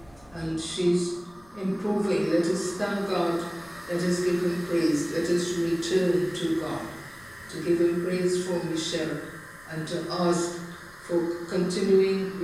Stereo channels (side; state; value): left; noise; rumble, 27 dB below the sound